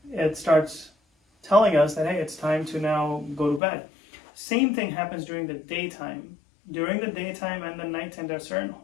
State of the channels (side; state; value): right; drops out; at 3.6 s